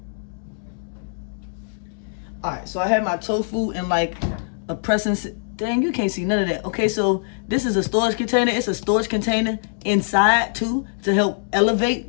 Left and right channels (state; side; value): silent; right; digital silence